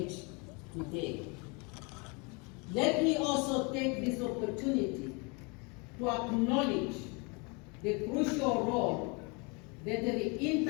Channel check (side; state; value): right; quieter; 31.1 dB